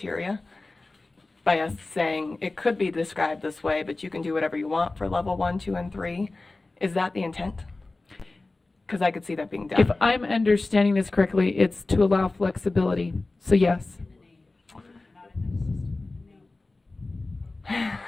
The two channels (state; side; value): quieter; right; 3.2 dB